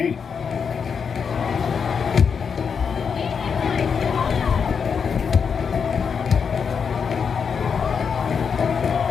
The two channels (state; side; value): quieter; right; 6.3 dB